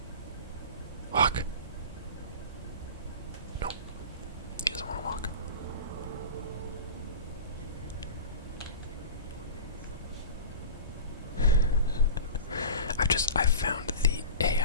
Walk. Nope. He doesn't want to walk. I've found the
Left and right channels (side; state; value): both; inverted; correlation -0.33